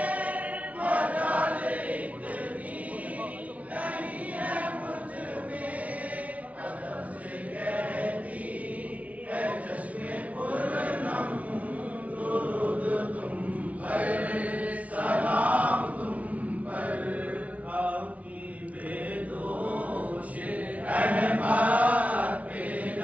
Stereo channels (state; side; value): late; left; 0.068 ms